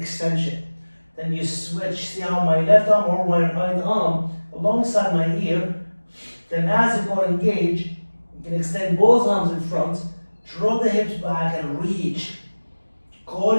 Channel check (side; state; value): both; inverted; correlation -1.00